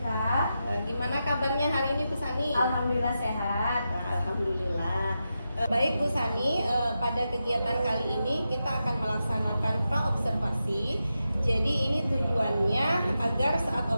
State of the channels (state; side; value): inverted; both; correlation -0.89